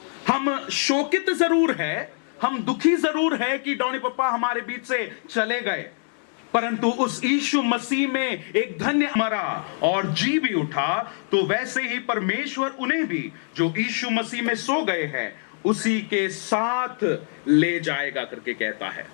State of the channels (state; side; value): silent; right; 62 dB below the other